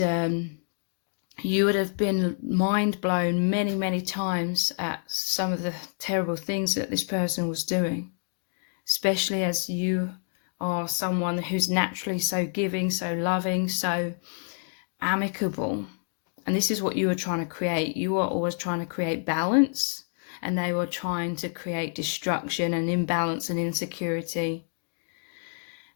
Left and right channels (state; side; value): silent; right; 60 dB below the other